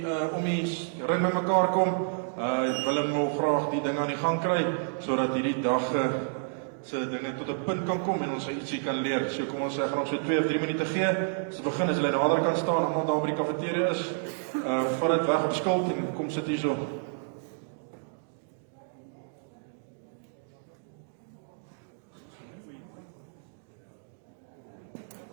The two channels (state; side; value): silent; left; digital silence